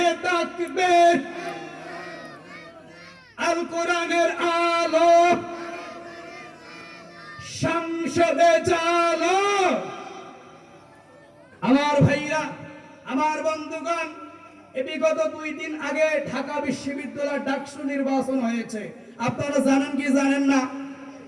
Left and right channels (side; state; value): both; identical; correlation 1.00